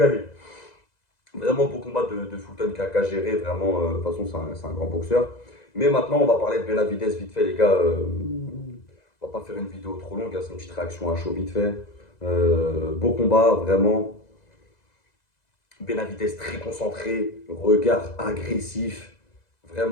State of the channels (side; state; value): right; late; 2.0 ms